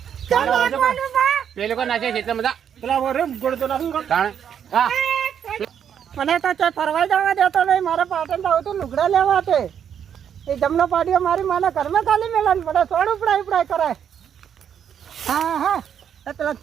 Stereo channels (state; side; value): quieter; left; 8.5 dB